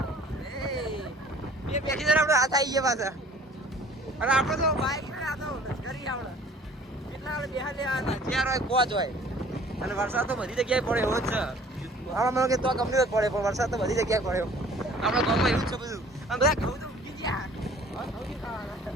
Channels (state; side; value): normal; both; correlation 0.52